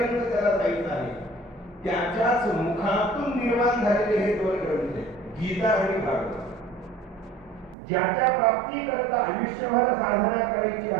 त्याला जायचं आहे, त्याच्याच मुखातून निर्माण झालेले हे 2 ग्रंथ आहेत, गीता आणि भागवत. ज्याच्या प्राप्ती करता आयुष्यभर साधना करायची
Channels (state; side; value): drops out; left; at 7.8 s